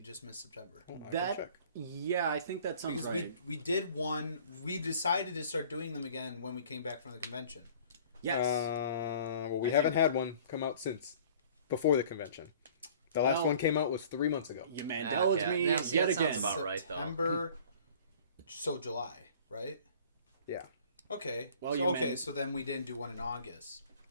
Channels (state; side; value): inverted; both; correlation -0.50